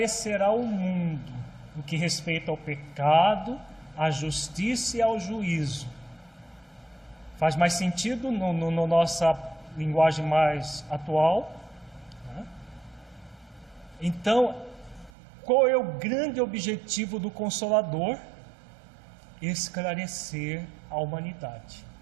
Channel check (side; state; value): left; drops out; at 15.1 s